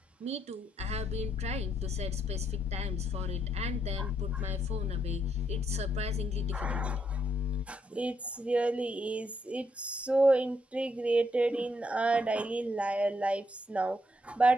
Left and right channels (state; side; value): normal; both; correlation 0.77